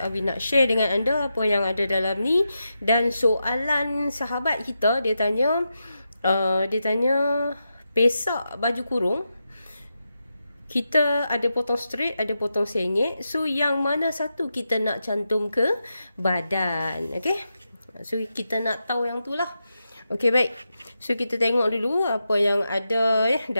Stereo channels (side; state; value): both; inverted; correlation -0.88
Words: nak share dengan anda apa yang ada dalam ni. Dan soalan sahabat kita, dia tanya pesak baju kurung kita ada potong straight, ada potong sengit. So yang mana satu kita nak cantum ke badan? Okay, so kita nak tahu yang tu lah. Okay, baik. So kita tengok dulu apa yang ada